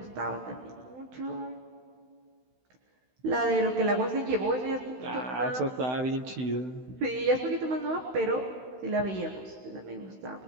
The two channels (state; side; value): late; left; 16 ms